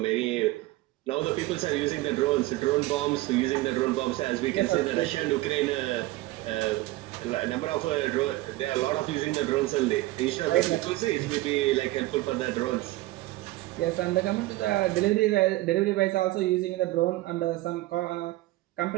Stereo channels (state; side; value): quieter; left; 18.4 dB